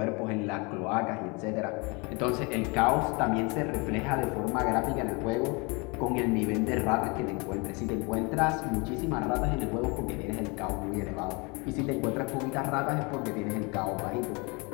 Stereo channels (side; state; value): right; quieter; 29.3 dB